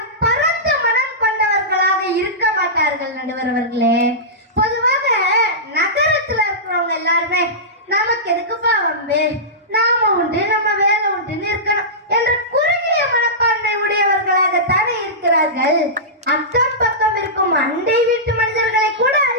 பரந்த மனம் கொண்டவர்களாக இருக்க மாட்டார்கள் நடுவர் அவர்களே. பொதுவாக நகரத்துல இருக்கிறவங்க எல்லாருமே நமக்கு எதுக்குப்பா வம்பு, நாம உண்டு நம்ம வேலை உண்டுன்னு இருக்கணும் என்ற குறுகிய மனப்பான்மை உடையவர்களாகத்தானே இருக்கிறார்கள். அக்கம் பக்கம் இருக்கும் அண்டை வீட்டு மனிதர்களை கூட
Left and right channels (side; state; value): both; normal; correlation -0.16